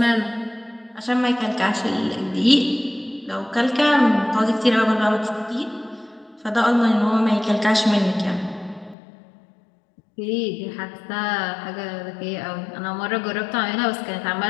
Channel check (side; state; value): right; drops out; at 9.0 s